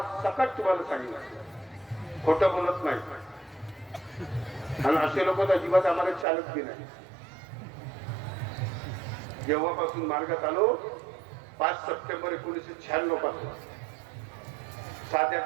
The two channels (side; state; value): left; drops out; at 6.2 s